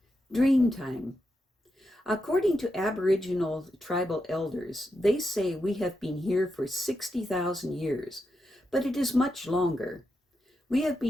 Dreamtime. According to Aboriginal tribal elders, they say we have been here for 60,000 years, but it is much longer. We have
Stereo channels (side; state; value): both; normal; correlation 0.86